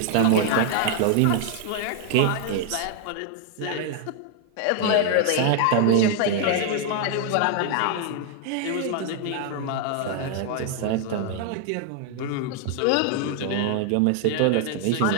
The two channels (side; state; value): both; different; correlation 0.00